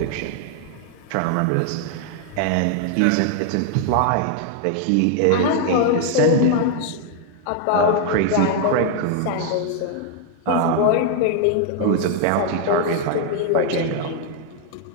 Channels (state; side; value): different; both; correlation 0.00